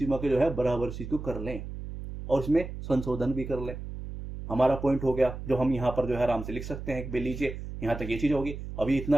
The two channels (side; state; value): right; noise; hum, 9 dB below the sound